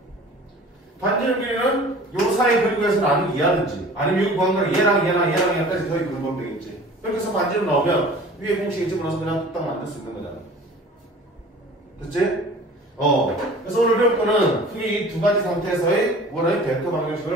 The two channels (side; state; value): both; normal; correlation 0.44